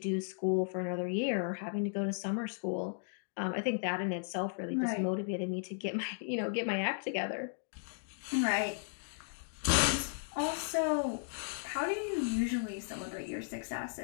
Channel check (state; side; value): silent; right; digital silence